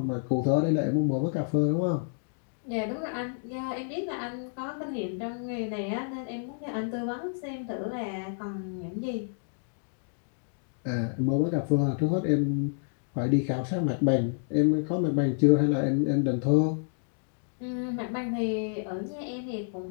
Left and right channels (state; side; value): silent; right; digital silence